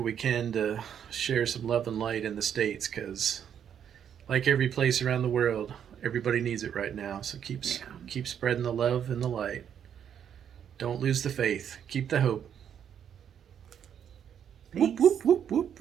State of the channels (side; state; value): left; quieter; 8.7 dB